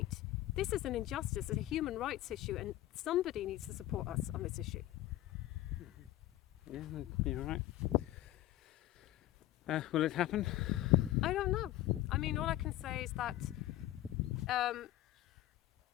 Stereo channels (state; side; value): quieter; right; 14.9 dB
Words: This is an injustice, it's a human rights issue, and somebody needs to support us on this issue. Yeah, you're right. Will it happen? I don't know. I mean, all I can say is that